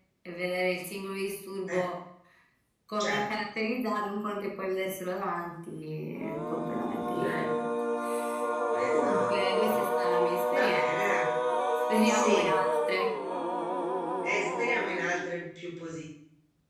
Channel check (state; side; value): identical; both; correlation 1.00